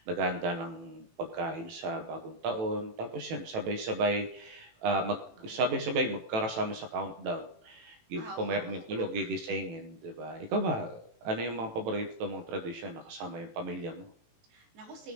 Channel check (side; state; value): left; late; 18 ms